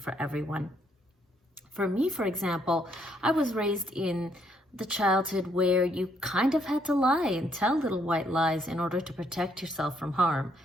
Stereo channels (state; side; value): normal; both; correlation 0.71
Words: everyone. For me, for example, I was raised in the childhood where you kind of had to lie and tell little white lies in order to protect yourself from harm.